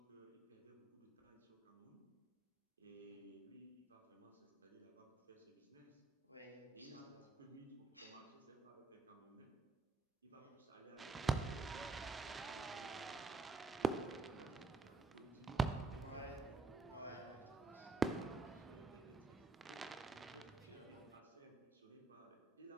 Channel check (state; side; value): quieter; left; 3.6 dB